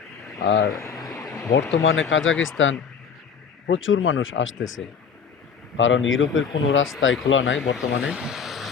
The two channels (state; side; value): quieter; right; 6.5 dB